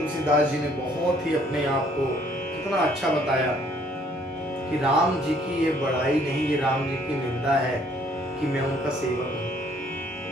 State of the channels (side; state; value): both; normal; correlation 0.62